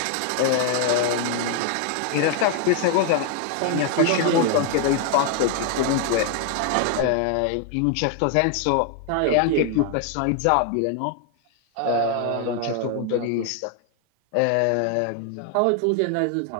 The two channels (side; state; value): both; different; correlation 0.00